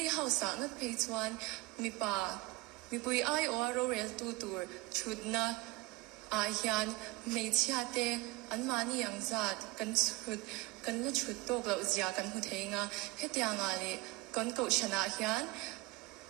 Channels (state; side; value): quieter; left; 21.2 dB